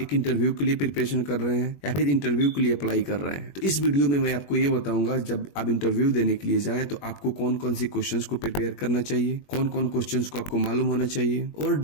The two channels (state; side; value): late; right; 21 ms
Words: एक इंटरव्यू के लिए प्रिपरेशन कर रहे हैं या फिर इंटरव्यू के लिए अप्लाई कर रहे हैं। तो इस वीडियो में मैं आपको ये बताऊंगा जब आप इंटरव्यू देने के लिए जाएं तो आपको कौन कौन सी क्वेश्चंस को प्रिपेयर करना चाहिए, कौन कौन क्वेश्चंस को आपको मालूम होना चाहिए, और